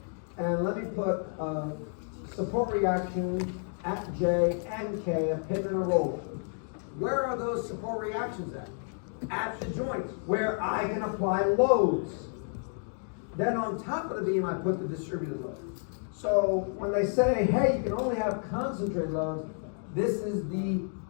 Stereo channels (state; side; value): silent; right; 57 dB below the other